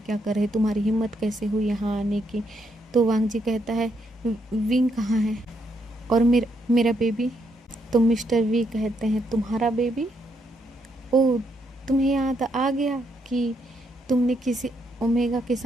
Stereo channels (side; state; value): both; normal; correlation 0.76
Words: कर रहे, तुम्हारी हिम्मत कैसे हुई यहाँ आने की? तो वांग जी कहता है विंग कहाँ है और मेरा बेबी? तो मिस्टर वी कहते हैं तुम्हारा बेबी? ओह, तुम्हें याद आ गया कि तुमने किसी ओमेगा के